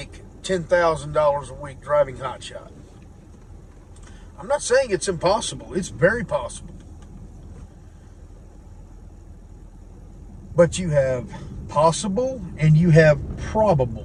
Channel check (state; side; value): identical; both; correlation 1.00